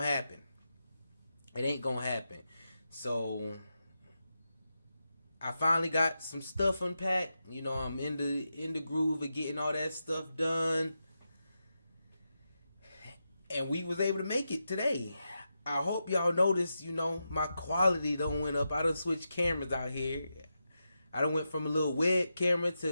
happen. It ain't gonna happen. So I finally got some stuff unpacked. I'm in the groove of getting all that stuff done. And we was able to make it today. I hope y'all noticed, my quality done went up. I done switched cameras out here. I done went from a little web camera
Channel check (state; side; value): inverted; both; correlation -0.88